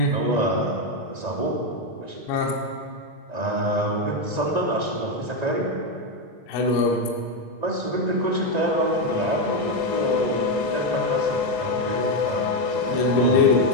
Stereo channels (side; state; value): left; late; 1.9 ms